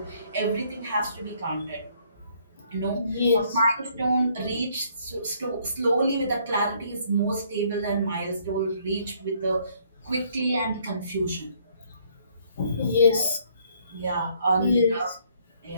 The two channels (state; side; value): inverted; both; correlation -0.65